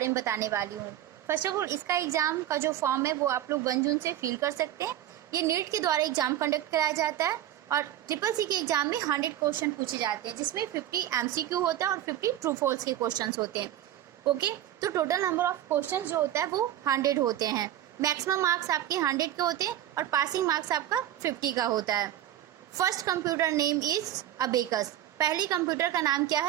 में बताने वाली हूँ। फर्स्ट ऑफ ऑल, इसका एग्जाम का जो फॉर्म है वो आप लोग 1 जून से फिल कर सकते हैं। ये नीट के द्वारा एग्जाम कंडक्ट कराया जाता है और CCC के एग्जाम में 100 क्वेश्चन पूछे जाते हैं, जिसमें 50 MCQ होता है और 50 ट्रू फॉल्स के क्वेश्चन होते हैं। ओके, तो टोटल नंबर ऑफ क्वेश्चन जो होता है वो 100 होते हैं। मैक्सिमम मार्क्स आपके 100 के होते हैं और पासिंग मार्क्स आपका 50 का होता है। First computer name is abacus. पहली कंप्यूटर का नाम क्या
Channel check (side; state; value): left; quieter; 12.2 dB